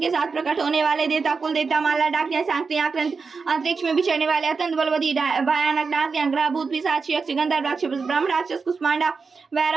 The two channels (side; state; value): left; quieter; 4.9 dB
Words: के साथ प्रकट होने वाले देवता कुल देवता माला डाकिया सांकरी आक्रंत अंतरिक्ष में विचरने वाले अत्यंत बलवती भयानक डाकिया ग्रह भूत पिशाच यक्ष गंधर्व राक्षस ब्रह्म राक्षस कुष्मांडा